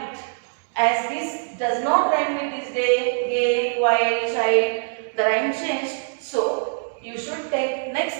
As this does not rhyme with this day, gay, white, child, the rhyme changed. So you should take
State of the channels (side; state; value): left; silent; 63 dB below the other